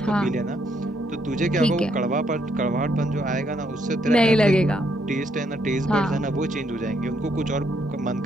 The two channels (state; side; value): normal; both; correlation 0.74